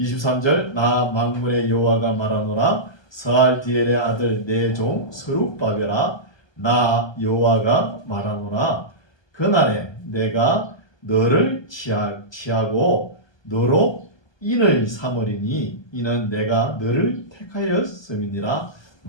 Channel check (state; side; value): late; right; 1.2 ms